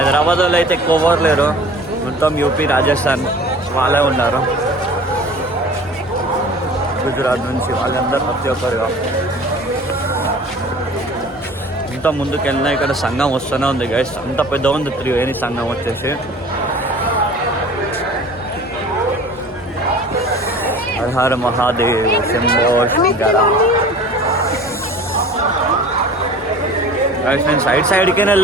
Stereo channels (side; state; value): both; normal; correlation 0.43